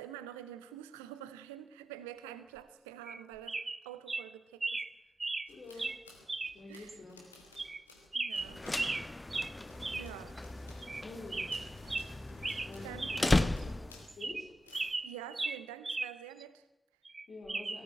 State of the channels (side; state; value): both; normal; correlation 0.91